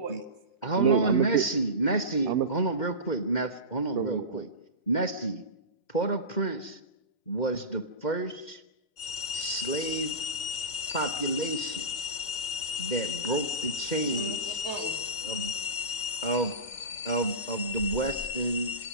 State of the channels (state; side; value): late; right; 2.1 ms